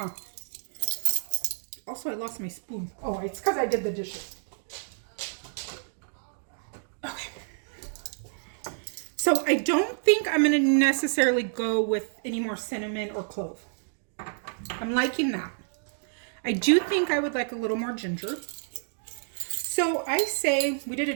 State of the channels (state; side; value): silent; left; digital silence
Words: Also, I lost my spoon. Oh, it's because I did the dishes. Okay. So, I don't think I'm going to necessarily go with any more cinnamon or clove. I'm liking that. I do think I would like a little more ginger. So, I say, we did a